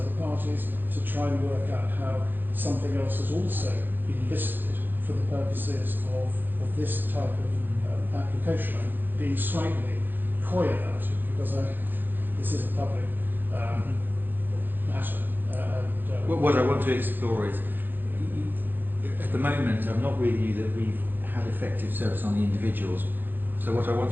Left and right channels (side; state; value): left; late; 0.092 ms